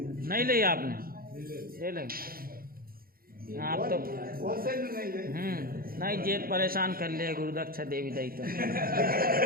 नहीं ली आपने, ले ली आप तो नहीं जेत परेशान कर लिया गुरुदक्षा देवी दाई तो।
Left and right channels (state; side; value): late; left; 0.43 ms